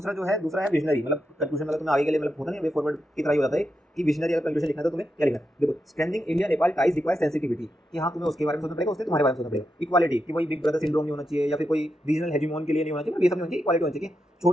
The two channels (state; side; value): normal; both; correlation 0.86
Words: जो है, दूसरा है विजनरी, मतलब कंक्लूजन, मतलब तुम्हें आगे के लिए मतलब होता नहीं वे फॉरवर्ड की तरह ही होता है कि विजनरी अगर कंक्लूजन लिखना है तो तुम्हें क्या लिखना है। देखो strengthening India Nepal ties requires sensitivity, कि हाँ तुम्हें उसके बारे में सोचना पड़ेगा, उससे तुम्हारे बारे में सोचना पड़ेगा। इक्वालिटी, कि वही बिग ब्रदर सिंड्रोम नहीं होना चाहिए या फिर कोई रीजनल हेजिमोन के लिए नहीं होना चाहिए, ये सब नहीं होना चाहिए। इक्वालिटी होनी चाहिए,